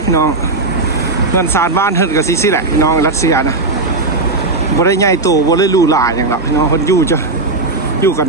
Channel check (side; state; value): left; quieter; 3.3 dB